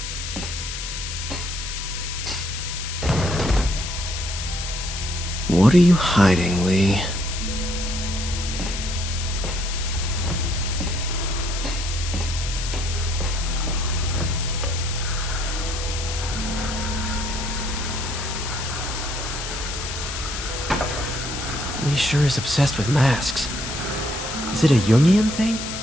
What are you hiding, Lee? Lee sure is obsessed with masks. Is it a Jungian thing?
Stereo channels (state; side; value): noise; left; hiss, 6 dB below the sound